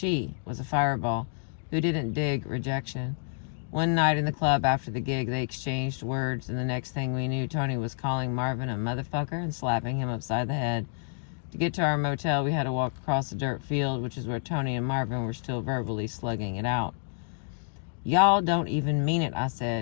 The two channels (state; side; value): silent; right; digital silence